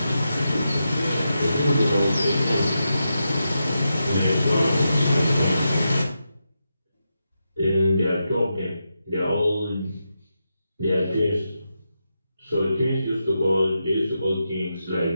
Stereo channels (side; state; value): both; inverted; correlation -0.87